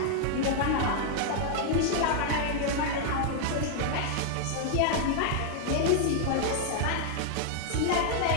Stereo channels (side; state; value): both; different; correlation -0.01